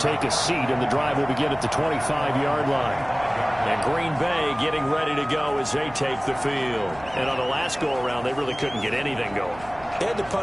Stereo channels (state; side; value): noise; right; hum, 20 dB below the sound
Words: take a seat, and the drive will begin at the 25-yard line. And Green Bay getting ready to go as they take the field. And on the last go-around, they really couldn't get anything going. They had to